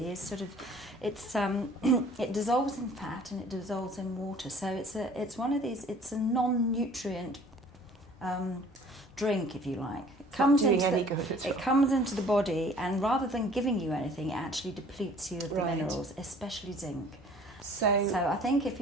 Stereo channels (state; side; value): normal; both; correlation 0.52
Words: is sort of it dissolves in fat and it dissolves in water. So it's one of these. It's a non-nutrient drink, if you like. It comes not doing into any the, good at it all. comes into the body, and rather than giving you anything, it actually depletes you of the Right. minerals, especially zinc. So I think if